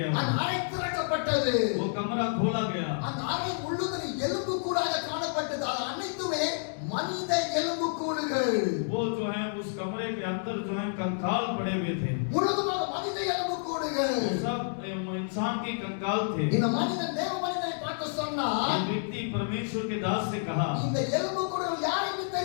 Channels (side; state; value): right; silent; digital silence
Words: அந்த அறை திறக்கப்பட்டது. वो कमरा खोला गया। அந்த அறை முழுவதும் எலும்பு கூடாக காணப்பட்டது. அது அனைத்துமே மனித எலும்பு கூடுகள். वो जो है उस कमरे के अंदर जो है कंकाल पड़े हुए थे। முழுவதுமாக மனித எலும்பு கூடுகள். वो सब इंसान के कंकाल थे। இந்த மனிதன் தேவ மனிதனை பார்த்து சொன்னார், ये व्यक्ति परमेश्वर के दास से कहा, இந்த எலும்பு கூடுகள் யாருக்கு